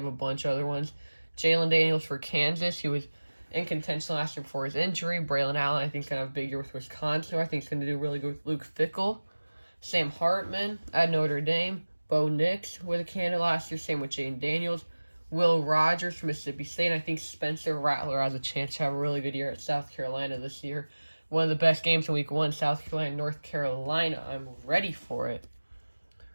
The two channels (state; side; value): inverted; both; correlation -1.00